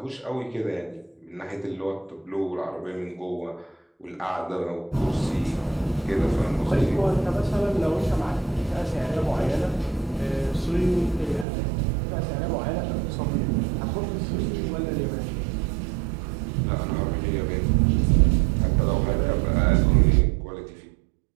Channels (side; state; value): left; drops out; at 11.5 s